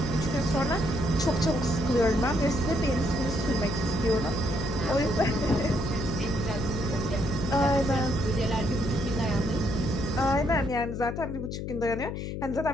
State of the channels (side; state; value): left; noise; hum, 5 dB below the sound